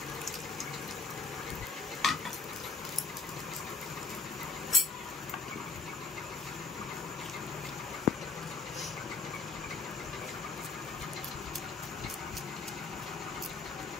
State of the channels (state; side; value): quieter; right; 4.5 dB